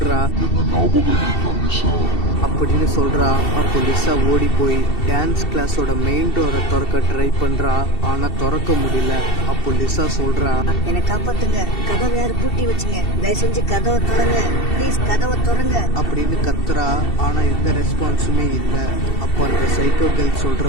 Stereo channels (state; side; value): late; right; 2.7 ms